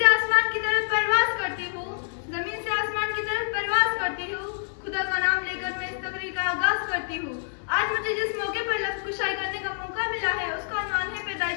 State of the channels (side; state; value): right; silent; 61 dB below the other